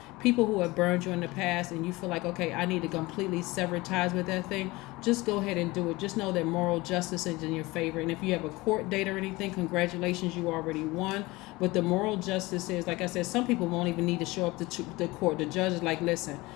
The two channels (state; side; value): quieter; right; 21.5 dB